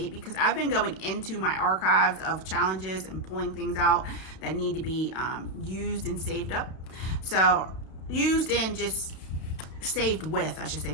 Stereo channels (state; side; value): late; right; 32 ms